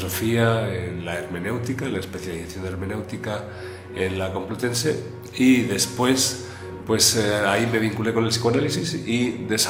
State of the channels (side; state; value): both; identical; correlation 1.00